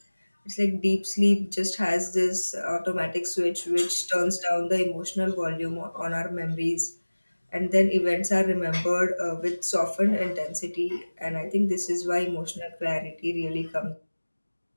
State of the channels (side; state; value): both; inverted; correlation -1.00